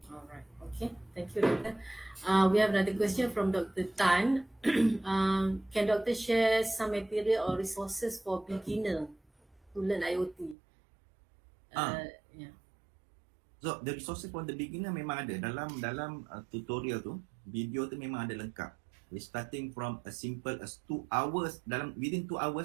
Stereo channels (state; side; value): drops out; left; at 10.6 s